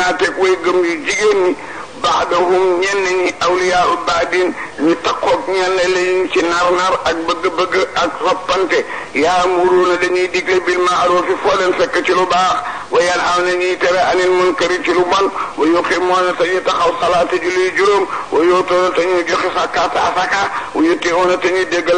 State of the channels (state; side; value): identical; both; correlation 1.00